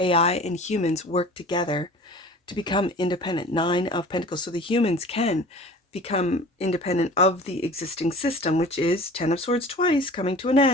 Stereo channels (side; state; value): both; normal; correlation 0.42